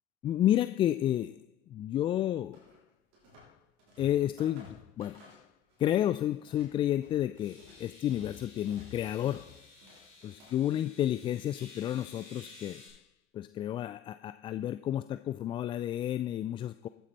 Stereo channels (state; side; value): quieter; right; 11.5 dB